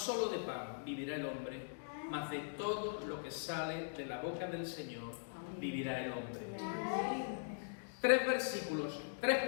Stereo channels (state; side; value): silent; right; digital silence